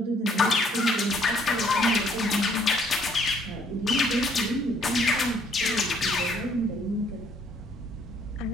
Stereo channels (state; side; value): normal; both; correlation 0.65